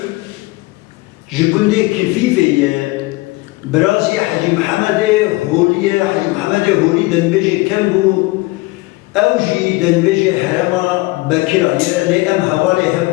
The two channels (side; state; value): right; quieter; 21.7 dB